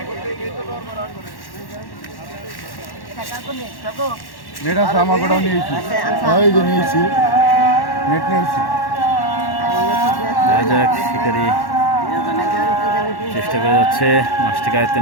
নেট আছে আমার কোটাও নিয়েছি ওই যে নিয়েছি নেট নিয়েছি শিকারি চেষ্টা করে যাচ্ছে মাছটিকে আয়ত্তে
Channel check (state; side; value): late; right; 1.1 ms